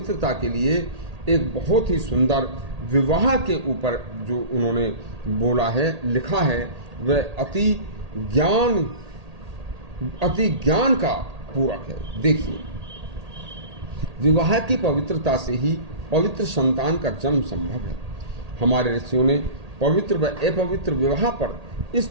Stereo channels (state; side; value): late; left; 1.8 ms